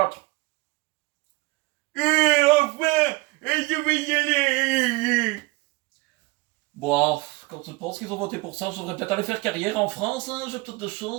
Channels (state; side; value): quieter; left; 23.4 dB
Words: Enfin, je vais y aller. Bon, quand je pense qu'ils ont voté pour ça, je devrais peut-être aller faire carrière en France, hein, j'ai peut-être de